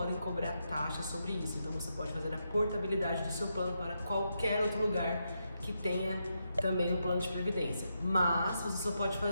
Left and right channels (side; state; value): both; inverted; correlation -0.83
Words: cobrar taxa sobre isso. Então você pode fazer a portabilidade do seu plano para qualquer outro lugar que tenha também um plano de previdência. Mas você só pode